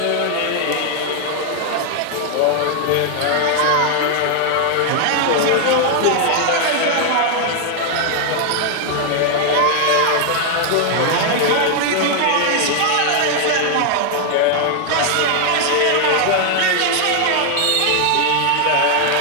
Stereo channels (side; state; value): both; different; correlation 0.00